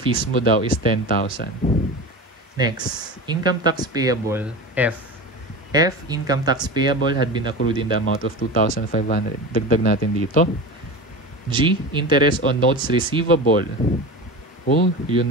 mo daw is 10,000. Next, income tax payable, F. F, income tax payable had been accrued in the amount of 2,500. Dagdag natin dito. G, interest on notes receivable. Oh,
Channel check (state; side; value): normal; both; correlation 0.29